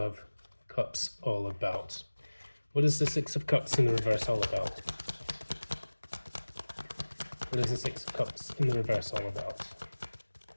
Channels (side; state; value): both; inverted; correlation -1.00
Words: Cups all about? What is the Six of Cups in the reverse all about? What is the Six of Cups in the reverse all about?